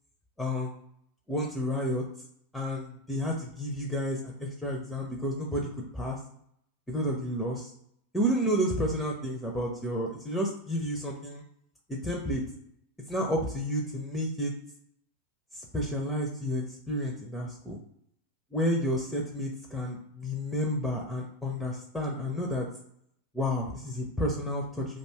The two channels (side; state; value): both; normal; correlation 0.17